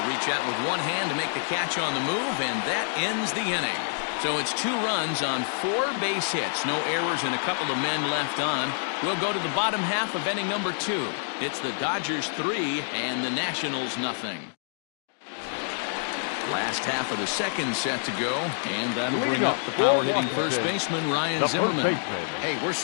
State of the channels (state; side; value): silent; right; digital silence